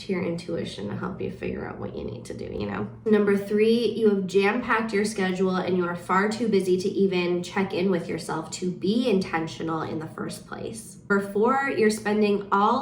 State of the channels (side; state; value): both; identical; correlation 1.00